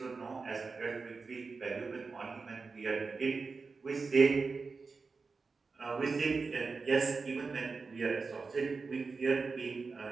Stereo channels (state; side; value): quieter; left; 4.4 dB